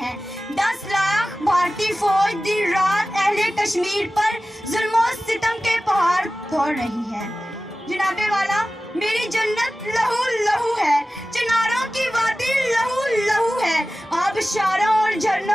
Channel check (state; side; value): normal; both; correlation 0.96